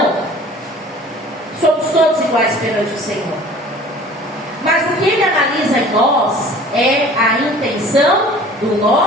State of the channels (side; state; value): both; normal; correlation 0.47